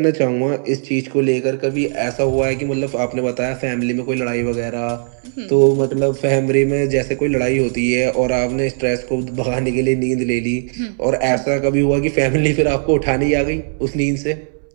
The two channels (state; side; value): silent; left; digital silence